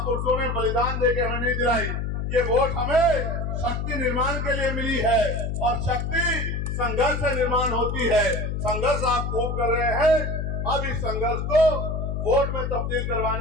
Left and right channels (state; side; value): noise; left; hum, 2 dB below the sound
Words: ने बलिदान देके हमें नहीं दिलाई। ये वोट हमें शक्ति निर्माण के लिए मिली है और शक्ति संघर्ष से निर्माण होती है। संघर्ष आप खूब कर रहे हैं, अब इस संघर्ष को वोट में तब्दील